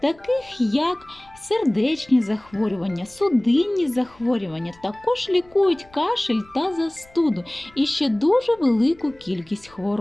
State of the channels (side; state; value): left; noise; rumble, 27 dB below the sound